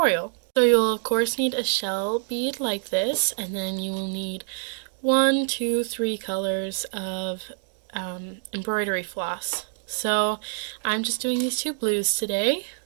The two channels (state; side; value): silent; left; digital silence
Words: So you'll of course need a shell bead like this, and then you will need 1, 2, 3 colors of embroidery floss. So I'm just doing these 2 blues today.